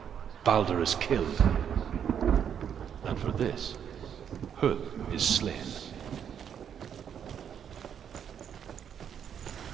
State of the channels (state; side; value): quieter; left; 8.5 dB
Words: Baldur is killed. And for this, Huth is slain.